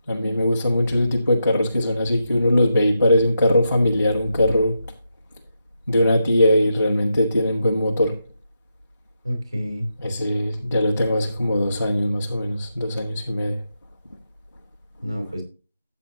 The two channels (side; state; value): both; inverted; correlation -0.84